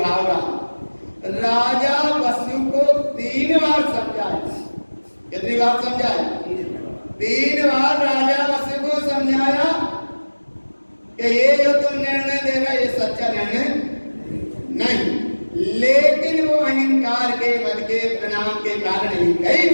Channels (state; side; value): inverted; both; correlation -1.00